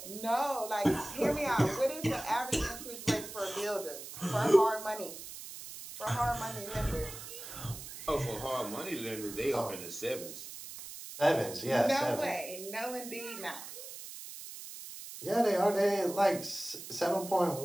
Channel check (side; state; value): right; noise; hiss, 11 dB below the sound